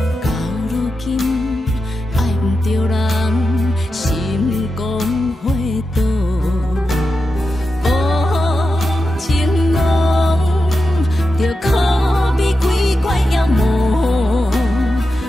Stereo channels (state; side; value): normal; both; correlation 0.90